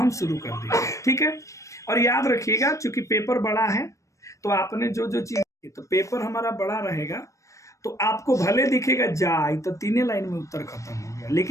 शुरू कर देंगे। ठीक है। और याद रखिएगा चूंकि पेपर बड़ा है, तो आपने जो जो चीज, तो पेपर हमारा बड़ा रहेगा तो आपको भले दिखेगा जाए तो 3 लाइन में उत्तर खत्म हो गया,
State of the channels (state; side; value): late; right; 0.15 ms